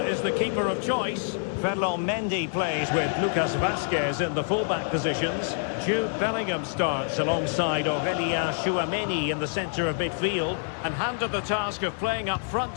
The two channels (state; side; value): silent; right; digital silence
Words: is the keeper of choice. Ferland Mendy plays with Lucas Vazquez in the fullback positions. Jude Bellingham starts alongside Aurélien Tchouameni in the centre of midfield. And handed the task of playing up front